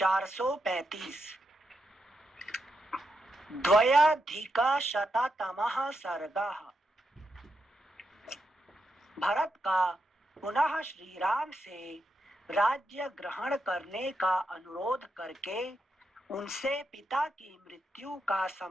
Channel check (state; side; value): normal; both; correlation 0.84